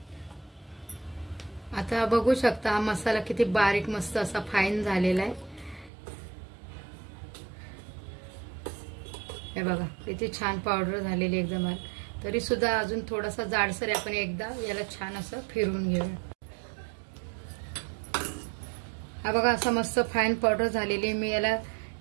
आता बघू शकता हा मसाला किती बारीक मस्त असा फाईन झालेला आहे. हे बघा किती छान पावडर झालेली एकदम. तरी सुद्धा अजून थोडासा जाडसर आहे. आपण एकदा याला छान असं फिरवून घेऊया. हा बघा असा मस्त फाईन पावडर झालेली. मी याला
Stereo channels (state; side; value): drops out; left; at 5.9 s